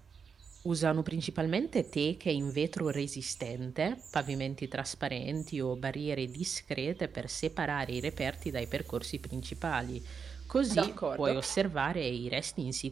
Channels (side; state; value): left; quieter; 6.1 dB